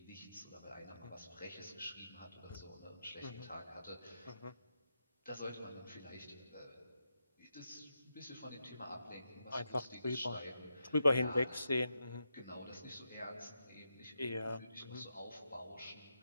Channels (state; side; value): inverted; both; correlation -0.85